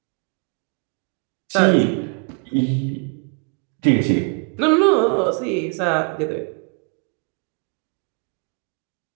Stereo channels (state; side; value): quieter; left; 37.6 dB